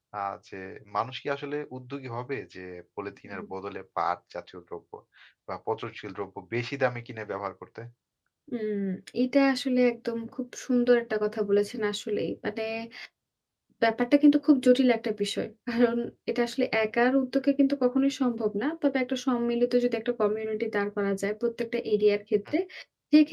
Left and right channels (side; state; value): both; identical; correlation 1.00